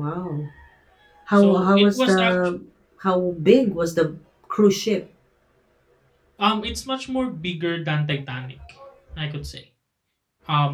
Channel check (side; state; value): both; identical; correlation 1.00